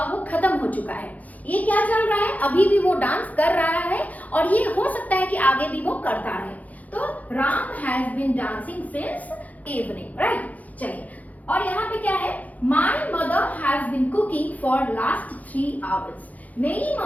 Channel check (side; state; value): right; late; 0.076 ms